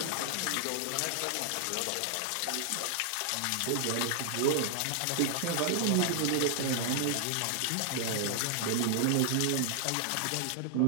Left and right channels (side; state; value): both; different; correlation 0.00